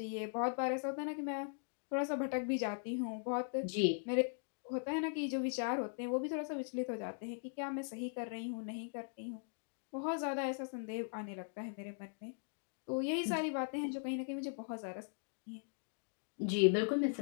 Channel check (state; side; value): silent; right; digital silence